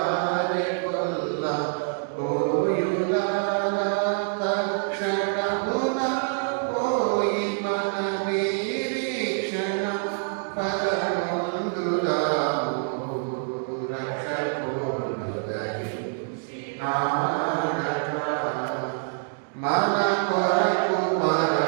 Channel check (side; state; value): left; silent; 61 dB below the other